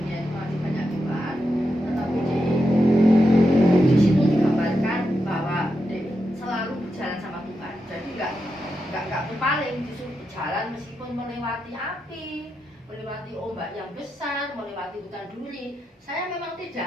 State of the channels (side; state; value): both; normal; correlation 0.86